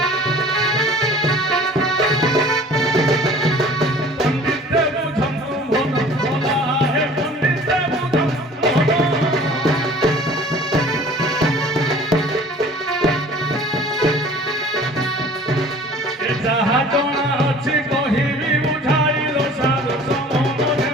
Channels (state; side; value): normal; both; correlation 0.48